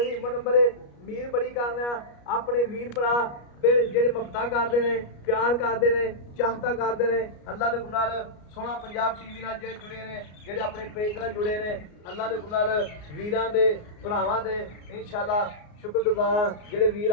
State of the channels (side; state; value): right; late; 33 ms